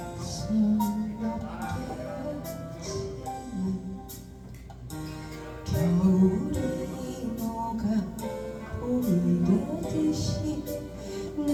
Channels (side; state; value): both; identical; correlation 1.00